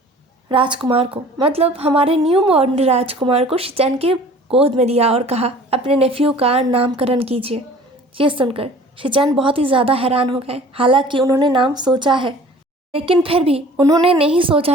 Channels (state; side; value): normal; both; correlation 0.48